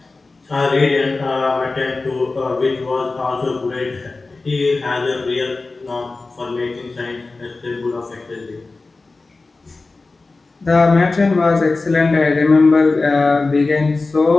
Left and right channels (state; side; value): quieter; right; 3.6 dB